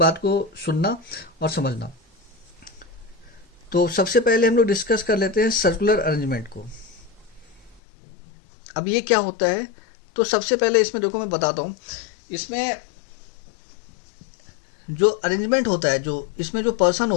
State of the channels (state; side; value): drops out; right; at 7.8 s